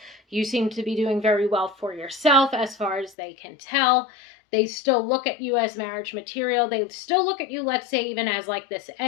you seem to be doing very well for yourself as far as they can tell. They still look at you as marriage material. They still look at you, let's say, even as like this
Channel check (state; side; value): drops out; right; at 3.2 s